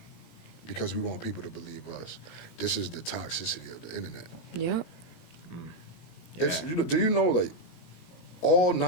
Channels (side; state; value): right; late; 17 ms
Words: because we want people to believe us. This is the toxicity of the internet. Yep. It's, do you know, like, all